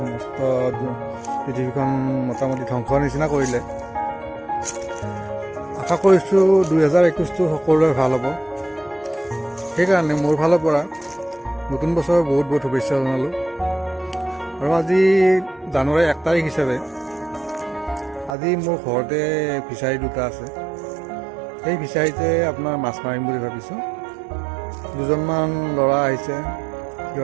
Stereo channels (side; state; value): left; drops out; at 18.3 s